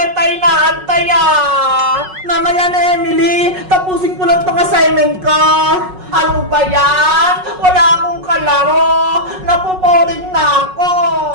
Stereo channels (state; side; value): late; left; 5.4 ms